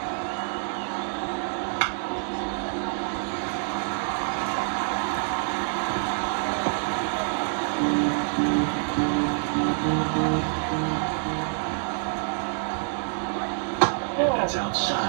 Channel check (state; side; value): silent; left; 60 dB below the other